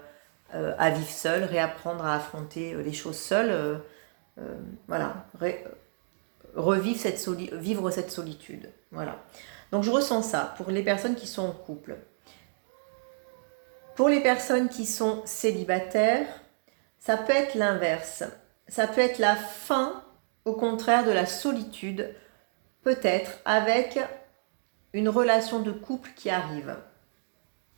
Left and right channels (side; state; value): left; silent; digital silence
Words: vivre seul, réapprendre à affronter les choses seul. Vivre cette solitude. Voilà. Donc je ressens ça pour les personnes qui sont en couple. Pour les personnes qui sont célibataires, ça peut être l'inverse. Ça peut être la fin, au contraire, de la solitude, peut-être avec une relation de couple qui arrive.